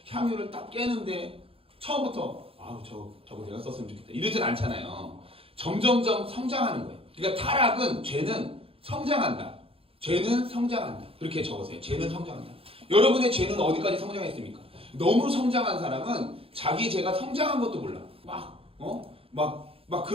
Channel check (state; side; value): late; left; 0.27 ms